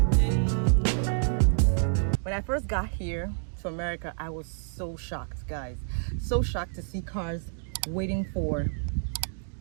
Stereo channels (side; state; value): left; silent; digital silence